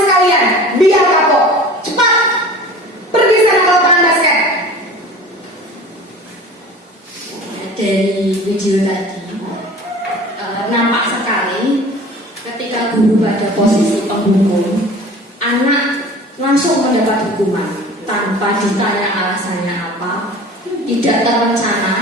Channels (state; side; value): normal; both; correlation 0.41